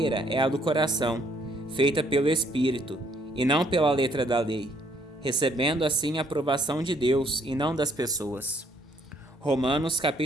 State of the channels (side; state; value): both; normal; correlation 0.66